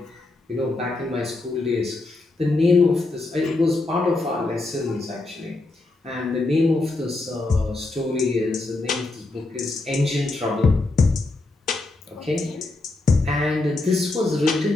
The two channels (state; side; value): quieter; right; 3.1 dB